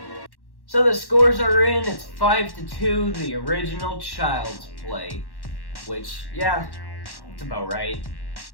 So the scores are in, it's 5-2, the original Child's Play. Which, yeah, it's about right.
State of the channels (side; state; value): right; late; 1.1 ms